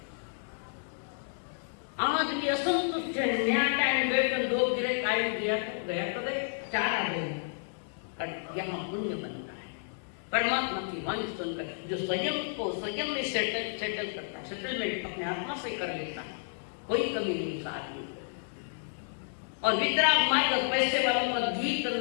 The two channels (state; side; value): silent; right; digital silence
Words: आदमी असंतुष्ट है, न्याय टाइम बैठ दो गिरे कायम गया तो गए 4 आ गए। यहाँ पुण्य बनता है परमात्मा की वाणी सुनकर, जो स्वयं को स्वयं में सेटल करता है, सेटलमेंट अपने आत्मा से कर लेता है, कोई कमी नहीं उस आदमी। और वितराग मार्ग पैसे वालों का गीत